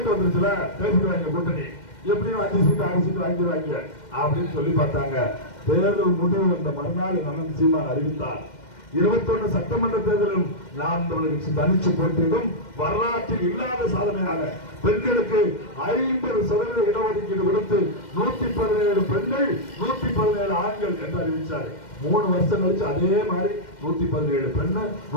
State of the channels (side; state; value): right; late; 2.1 ms